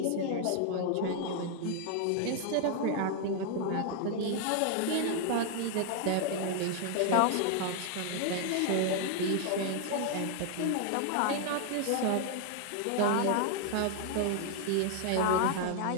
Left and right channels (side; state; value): both; different; correlation 0.00